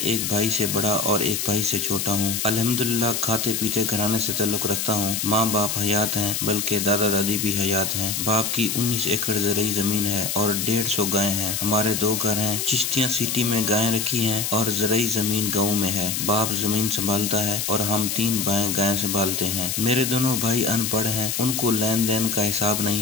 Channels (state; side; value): noise; left; hiss, 1 dB below the sound